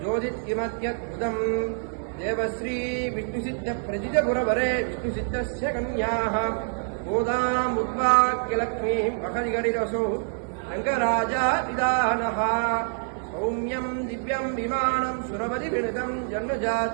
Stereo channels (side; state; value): left; silent; 61 dB below the other